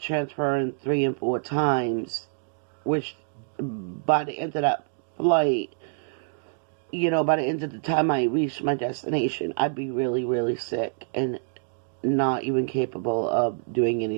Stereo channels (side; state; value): left; silent; digital silence